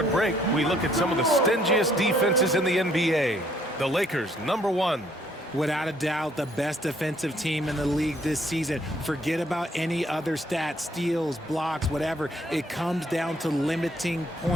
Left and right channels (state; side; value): normal; both; correlation 0.65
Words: break, we look at some of the stingiest defenses in the NBA. The Lakers, number 1. Without a doubt, the best defensive team in the league this season. Forget about any other stats, steals, blocks, whatever. It comes down to limiting